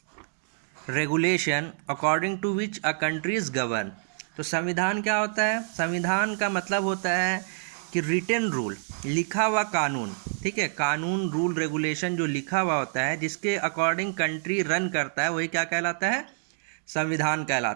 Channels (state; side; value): silent; left; digital silence